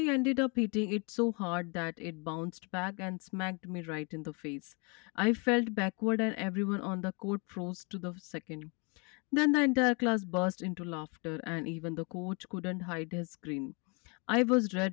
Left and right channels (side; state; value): right; quieter; 33.2 dB